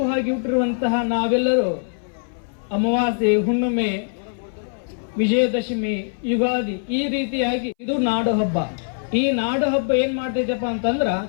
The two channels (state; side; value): silent; right; 62 dB below the other